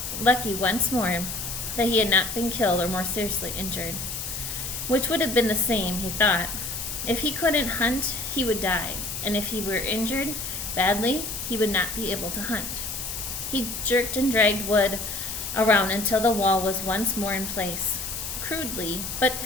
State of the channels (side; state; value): left; noise; hiss, 5 dB below the sound